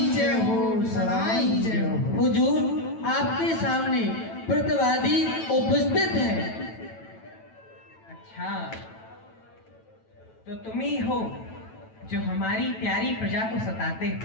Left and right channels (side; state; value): right; late; 9.1 ms